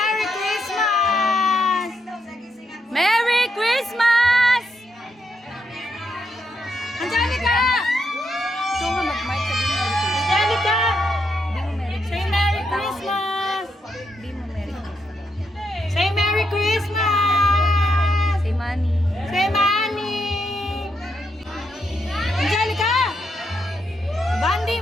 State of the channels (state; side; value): normal; both; correlation 0.80